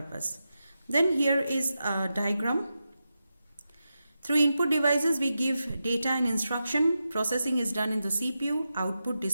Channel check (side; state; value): both; inverted; correlation -0.90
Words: Then here is a diagram. Through input devices, we give data and instruction. Processing is done in the CPU. Output